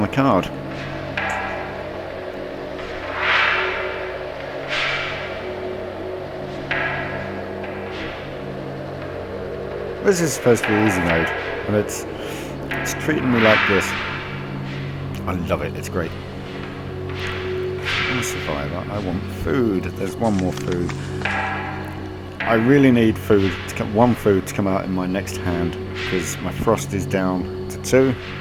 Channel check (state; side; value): identical; both; correlation 1.00